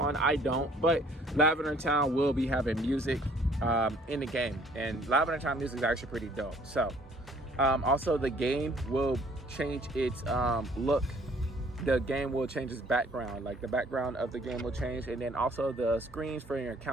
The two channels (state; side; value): normal; both; correlation 0.58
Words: I don't, but Lavender Town will be having music in the game, and Lavender Town music is actually pretty dope. So also the game will change its look. The game will change its background, like the background of the game will change, and then also the screens for your